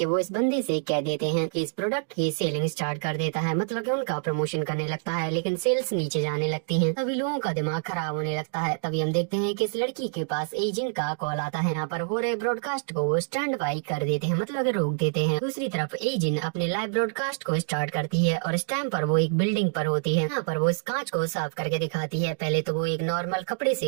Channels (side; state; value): left; silent; digital silence